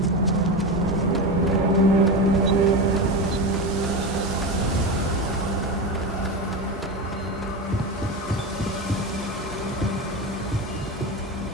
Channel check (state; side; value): normal; both; correlation 0.20